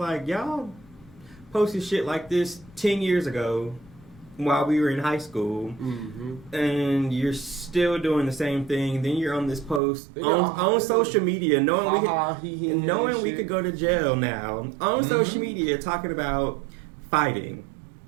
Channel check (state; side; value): drops out; left; at 9.8 s